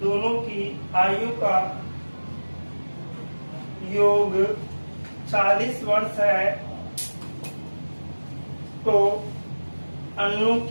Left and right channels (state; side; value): inverted; both; correlation -1.00